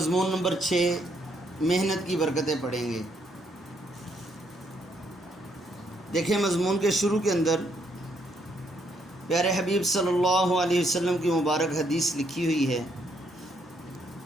نمبر 6 محنت کی برکتیں پڑھیں گے۔ دیکھیں، مضمون کے شروع کے اندر پیارے حبیب صلی اللہ علیہ وسلم کی مبارک حدیث لکھی ہوئی ہے،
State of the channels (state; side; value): normal; both; correlation 0.73